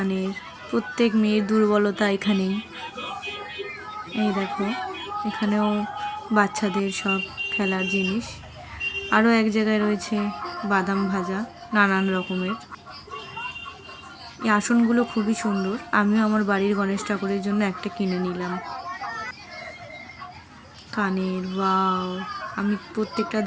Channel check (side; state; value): both; identical; correlation 1.00